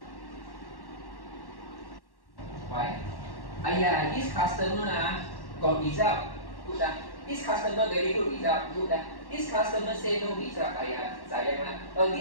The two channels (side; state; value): right; late; 1.1 ms